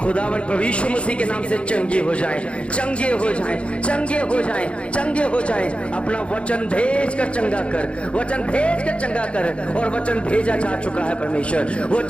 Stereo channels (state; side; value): late; right; 0.060 ms